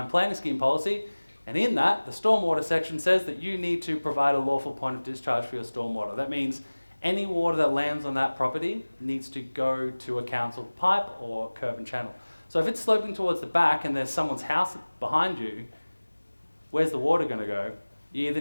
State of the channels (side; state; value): both; inverted; correlation -1.00